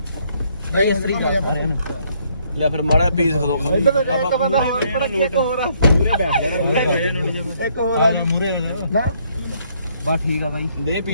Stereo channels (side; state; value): both; inverted; correlation -0.69